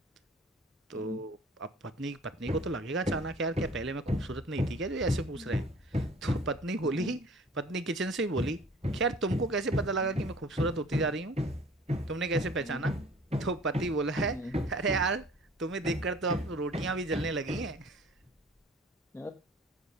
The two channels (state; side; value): normal; both; correlation 0.48